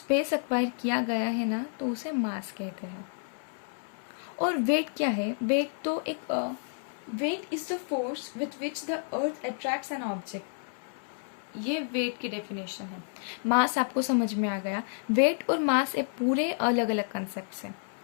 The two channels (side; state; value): right; silent; 58 dB below the other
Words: एक्वायर किया गया है ना, तो उसे मास कहते हैं। और वेट क्या है, वेट तो एक weight is the force with which the earth attracts an object, ये वेट की डेफिनेशन है। मास आपको समझ में आ गया, वेट और मास एक पूरे अलग अलग कंसेप्ट है।